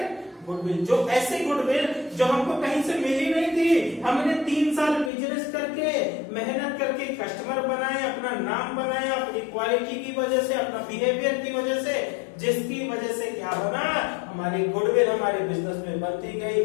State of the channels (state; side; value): drops out; right; at 5.1 s